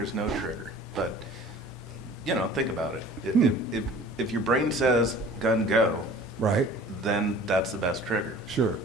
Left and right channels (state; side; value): normal; both; correlation 0.46